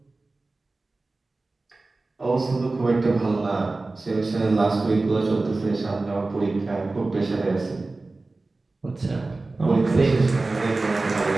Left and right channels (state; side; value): quieter; left; 3.3 dB